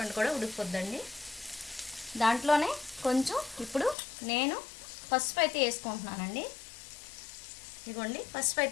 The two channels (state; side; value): drops out; right; at 4.0 s